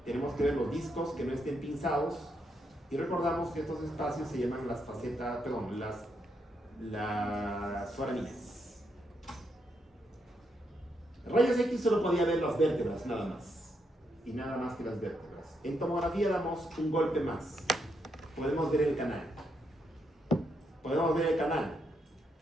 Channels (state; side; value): normal; both; correlation 0.79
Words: Tenemos que ver los discos que no estén pinzados. Y recordamos que estos espacios se llaman las facetas, perdón, las foramíneas. Rayos X solo podía ver las vértebras, nada más. Y nada más que las vértebras. En tomografía damos un golpe más. Podemos ver el canal. Podemos ver el canal,